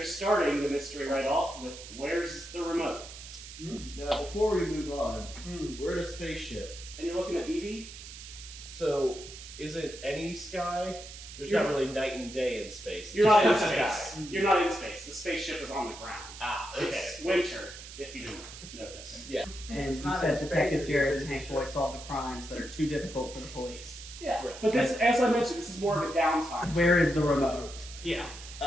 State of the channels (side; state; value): right; noise; hiss, 14 dB below the sound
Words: starting the mystery right off with, where's the remote? Now, before we move on, we're in a spaceship. And you're looking at BB? So, is it any sky? There's not really night and day in space. You're not in space. You're not in space. The spaceship is on the ground. Okay. It's winter, if you didn't notice. Yeah. And you said Detective Jared and Hank Boy solve the crimes that are too difficult for the police. Yeah, but this, as I mentioned, this is more of a downtime. Where is the remote? Yeah.